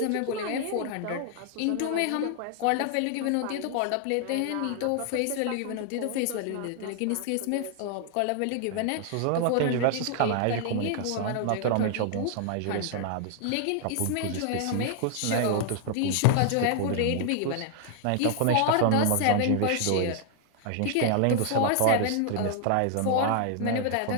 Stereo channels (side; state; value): both; different; correlation 0.00